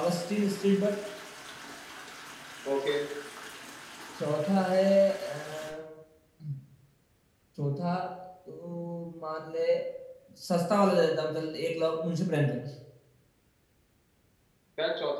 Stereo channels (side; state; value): both; identical; correlation 1.00